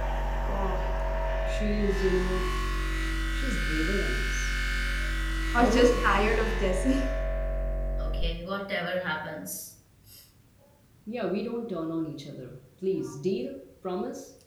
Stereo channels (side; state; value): both; identical; correlation 1.00